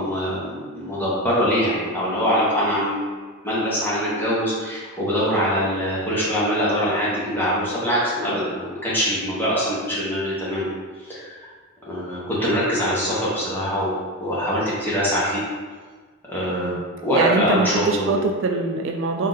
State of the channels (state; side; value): normal; both; correlation 0.17